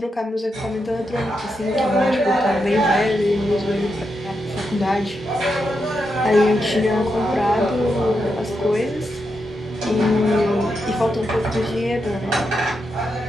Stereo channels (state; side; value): normal; both; correlation 0.84